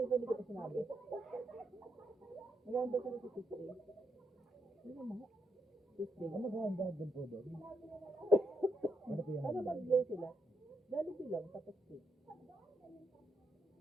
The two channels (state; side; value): normal; both; correlation 0.79